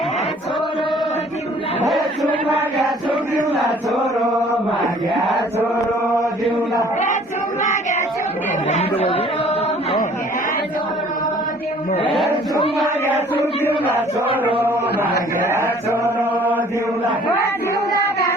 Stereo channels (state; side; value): normal; both; correlation 0.54